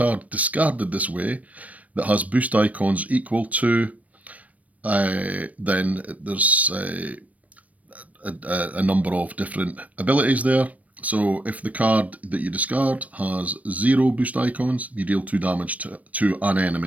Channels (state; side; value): late; left; 0.069 ms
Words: discarded this way that has boost icons equal to, then there's a number of different abilities there. So if the card that you discard has 0 boost icons, you deal 2 damage to an